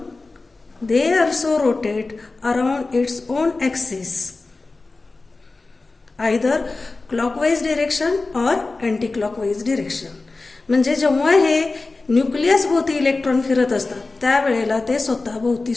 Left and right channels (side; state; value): right; quieter; 3.5 dB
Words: they also rotate around its own axis, either clockwise direction और अँटी क्लॉकवाईज डिरेक्शन. म्हणजे जेव्हा हे न्यूक्लियस भोवती इलेक्ट्रॉन फिरत असतात त्यावेळेला ते स्वतःभोवती